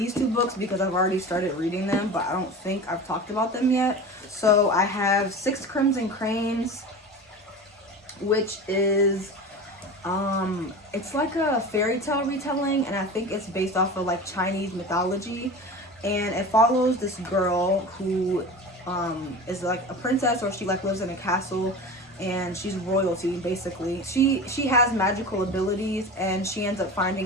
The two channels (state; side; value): normal; both; correlation 0.32